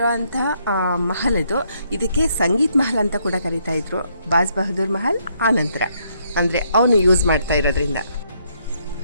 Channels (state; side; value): inverted; both; correlation -0.72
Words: ಅಂಥ ಮಹಲ್ ಇದು. ಇದಕ್ಕೆ ಸಂಗೀತ್ ಮಹಲ್ ಅಂತ ಕೂಡ ಕರೀತಾ ಇದ್ರು. ಬಾಜ್ ಬಹದ್ದೂರ್ ಮಹಲ್ ಆನಂತರ ಅಂದರೆ ಅವನು ಯೂಸ್ ಮಾಡ್ತಾ ಇರೋದ್ರಿಂದ.